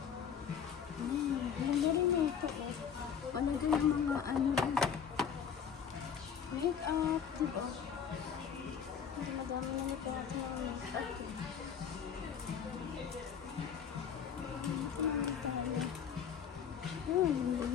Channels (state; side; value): quieter; right; 7.6 dB